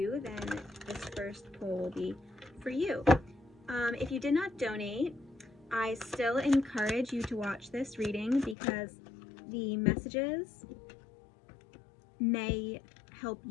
then this first pull will be for you. If you did not donate, I still encourage you to watch this reading because the messages may help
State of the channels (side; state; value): right; drops out; at 8.6 s